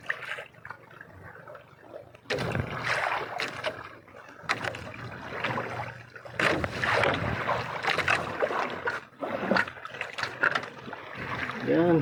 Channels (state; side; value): identical; both; correlation 1.00